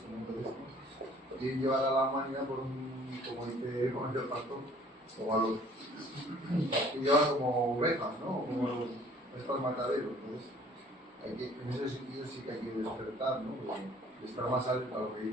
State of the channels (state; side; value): normal; both; correlation 0.54